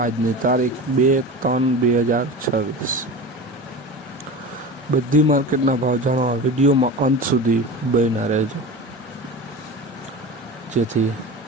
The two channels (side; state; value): both; normal; correlation 0.30